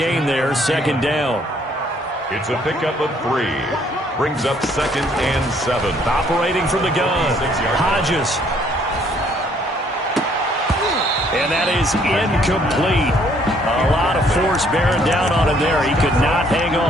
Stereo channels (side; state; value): both; normal; correlation 0.64